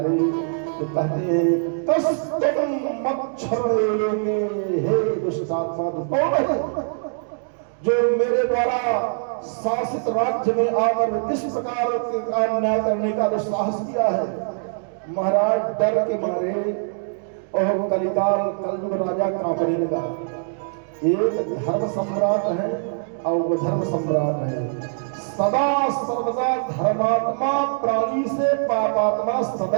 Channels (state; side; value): silent; left; digital silence